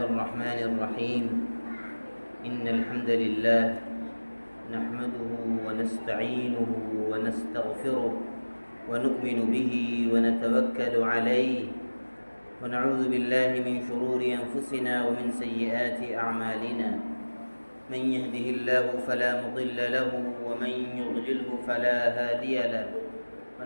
الرحمن الرحيم. إن الحمد لله نحمده ونستعينه ونستغفره ونؤمن به ونتوكل عليه ونعوذ بالله من شرور أنفسنا ومن سيئات أعمالنا. من يهده الله فلا مضل له ومن يضلله فلا هادي له.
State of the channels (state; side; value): inverted; both; correlation -1.00